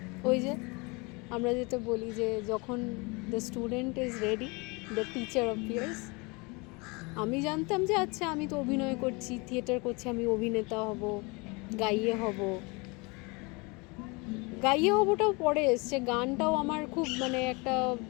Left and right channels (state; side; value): quieter; right; 28.1 dB